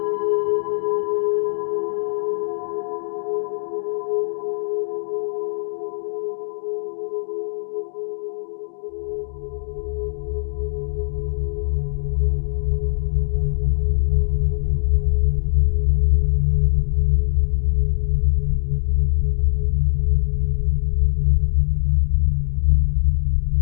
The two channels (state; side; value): silent; right; digital silence